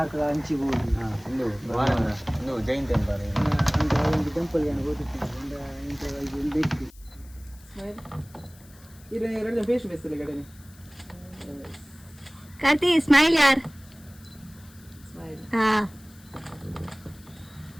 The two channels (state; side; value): noise; left; hiss, 25 dB below the sound